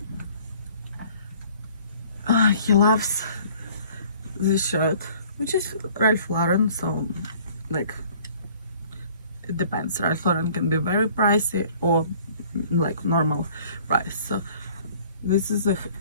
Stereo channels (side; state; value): both; inverted; correlation -0.53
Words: he loves this shirt, which is Ralph Lauren, so like it depends. Ralph Lauren can be very pricey or like normal price. So this is a